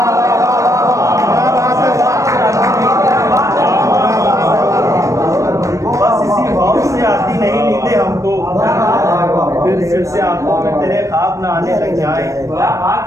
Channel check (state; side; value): late; left; 0.15 ms